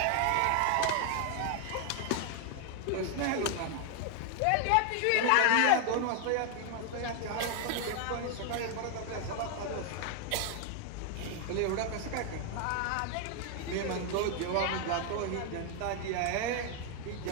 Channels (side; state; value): both; different; correlation 0.00